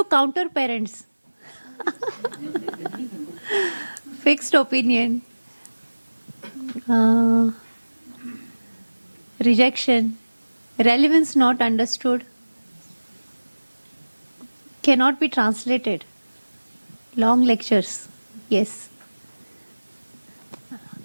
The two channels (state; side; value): inverted; both; correlation -1.00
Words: counter parents. Fixed opinion. Rejection. Relevance not understood. Cannot be translated. Long lectures. Yes.